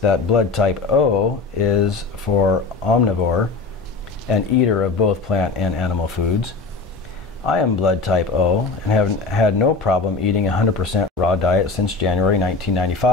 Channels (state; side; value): quieter; right; 4.1 dB